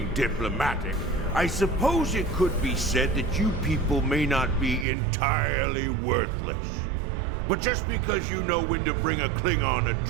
diplomatic, I suppose it could be said that you people may not be entirely worthless. But just because you know when to bring a Klingon a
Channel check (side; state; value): left; drops out; at 4.9 s